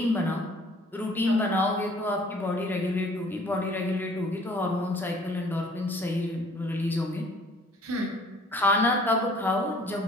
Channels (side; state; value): both; normal; correlation 0.55